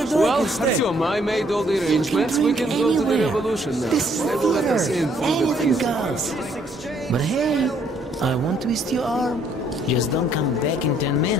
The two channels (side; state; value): both; normal; correlation 0.66